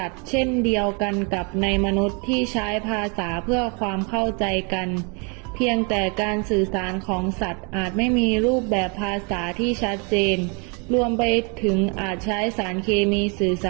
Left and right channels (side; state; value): left; quieter; 33.9 dB